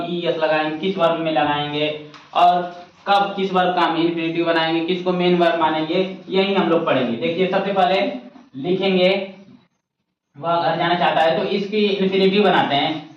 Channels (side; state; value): both; identical; correlation 1.00